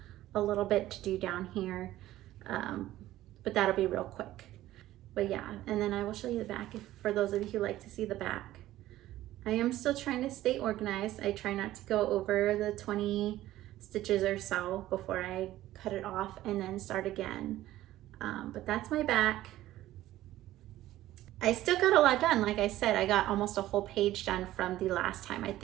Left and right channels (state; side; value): quieter; left; 14.8 dB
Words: a little bit to do down here, but that'll be real quick. But yeah, and then I will show you the back for those of you who like to see the back. I am still trying to stay organized. I try not to go over the 20 stitches or so before I cut it off and then start again. But that's my back. I still got a lot done. Like I said, I got almost a whole page done from the last time. I